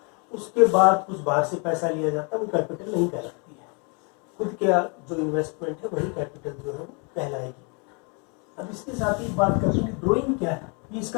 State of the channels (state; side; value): quieter; right; 34.3 dB